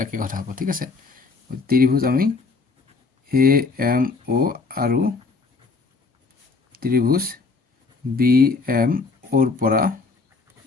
একে কথা হ'ব ঠিক আছে ত্ৰিভুজ আমি এ এম ও আৰু ত্ৰিভুজ বি এম ওৰ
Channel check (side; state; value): right; quieter; 4.1 dB